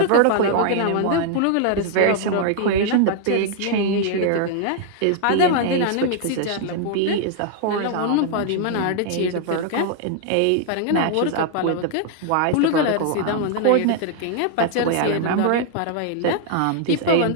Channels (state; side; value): different; both; correlation 0.00